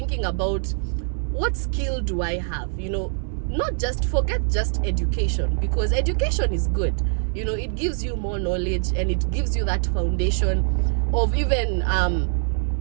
about what skill do I have, not just forget just education, because education is good, it gives you more knowledge and it gives you that foundation of even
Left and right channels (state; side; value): silent; left; 63 dB below the other